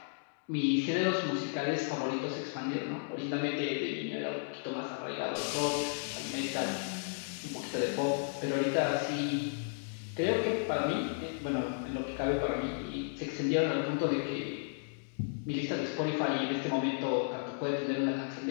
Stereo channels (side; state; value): right; silent; digital silence